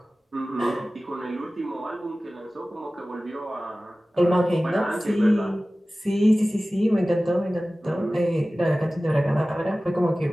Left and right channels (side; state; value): both; normal; correlation 0.97